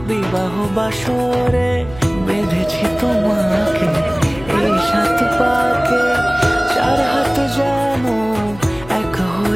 বিবাহ বাসরে বেঁধেছি তোমাকে এই সাত পাকে চার হাত যেন এক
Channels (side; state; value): right; noise; hum, 18 dB below the sound